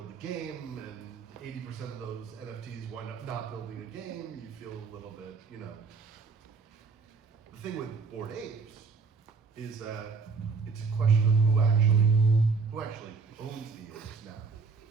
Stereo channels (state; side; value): quieter; left; 4.7 dB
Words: a game and 80% of those NFTs wind up not building a game, you feel a little bit, you know. The thing with Bored Apes is that it's a question of who actually owns the apes now,